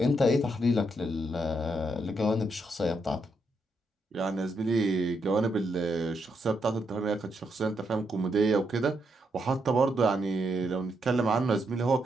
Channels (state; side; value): normal; both; correlation 0.79